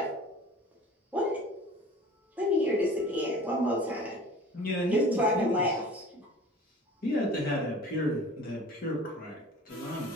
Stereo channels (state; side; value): normal; both; correlation 0.43